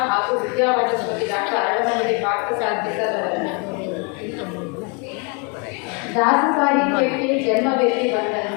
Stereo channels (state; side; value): quieter; right; 32.9 dB